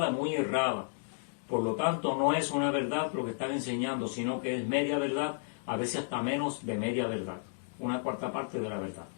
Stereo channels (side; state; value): right; silent; digital silence